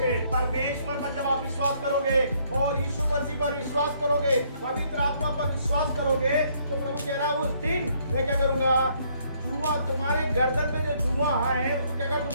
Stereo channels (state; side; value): inverted; both; correlation -0.67